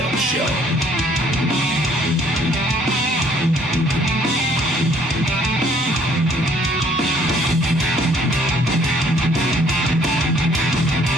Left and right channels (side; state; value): both; normal; correlation 0.61